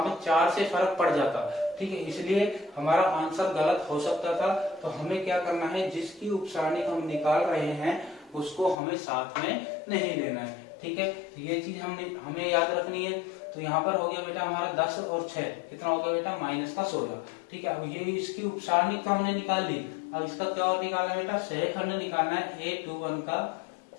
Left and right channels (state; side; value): drops out; right; at 8.8 s